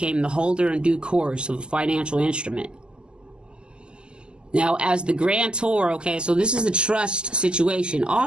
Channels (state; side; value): late; left; 0.049 ms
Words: the holder in due course of a financial instrument. Now, as the grantor, okay, so this is a trust situation.